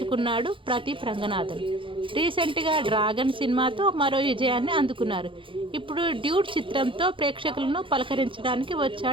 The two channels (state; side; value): late; left; 0.25 ms